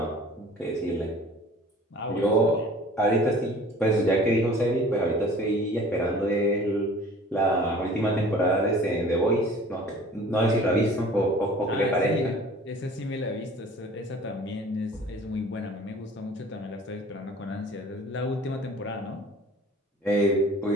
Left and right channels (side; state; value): both; normal; correlation 0.47